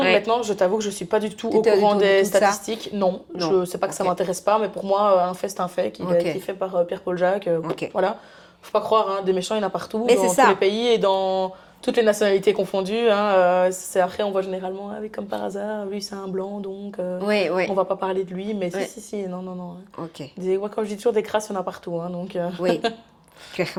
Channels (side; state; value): both; identical; correlation 1.00